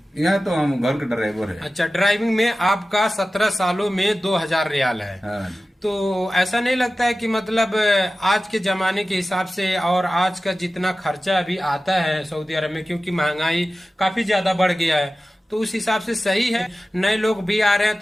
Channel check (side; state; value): both; normal; correlation 0.95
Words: यहाँ तो हम घर के ड्राइवर है। अच्छा, ड्राइविंग में आपका 17 सालों में 2000 रियाल है। हाँ। तो ऐसा नहीं लगता है कि मतलब आज के जमाने के हिसाब से और आज का जितना खर्चा अभी आता है सऊदी अरब में, क्योंकि महंगाई काफी ज्यादा बढ़ गया है, तो उस हिसाब से सही है? नए लोग भी आ रहे हैं